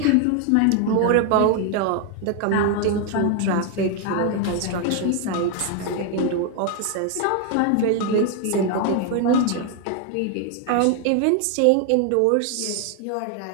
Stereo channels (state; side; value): different; both; correlation 0.01